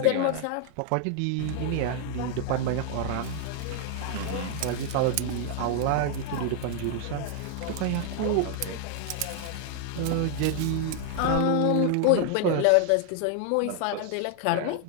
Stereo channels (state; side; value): different; both; correlation 0.00